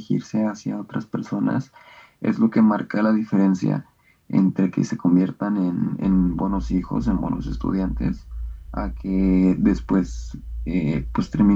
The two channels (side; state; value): both; identical; correlation 1.00